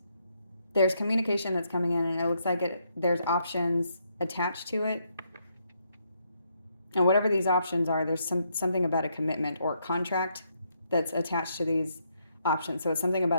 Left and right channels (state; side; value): inverted; both; correlation -0.76